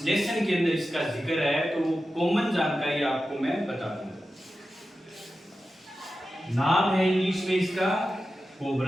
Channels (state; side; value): normal; both; correlation 0.92